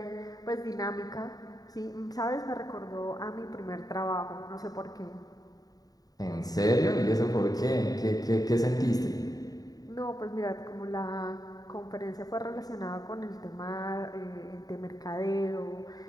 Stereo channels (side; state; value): right; late; 0.18 ms